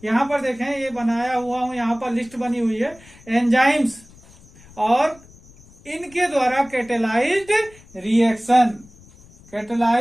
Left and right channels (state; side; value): noise; left; rumble, 24 dB below the sound